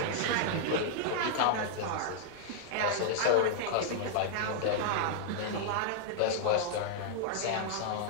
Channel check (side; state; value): both; different; correlation -0.01